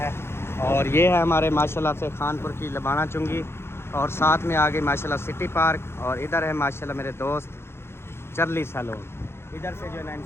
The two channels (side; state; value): right; late; 0.12 ms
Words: और ये है हमारे माशाल्लाह से खानपुर की लबाना चुंगी, और साथ में आ गई माशाल्लाह सिटी पार्क, और इधर है माशाल्लाह मेरे दोस्त चर्ली सैलून। इधर से जो है ना